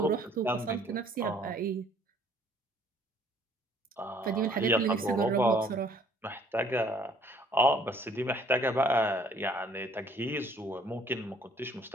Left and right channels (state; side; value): normal; both; correlation 0.59